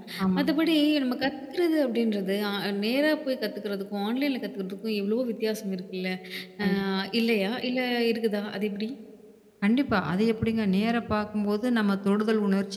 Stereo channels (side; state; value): both; identical; correlation 1.00